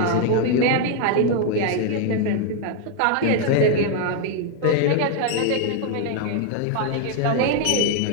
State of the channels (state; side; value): different; both; correlation 0.00